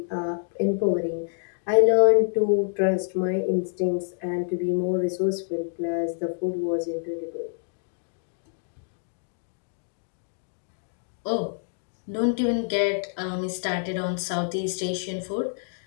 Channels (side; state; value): right; silent; digital silence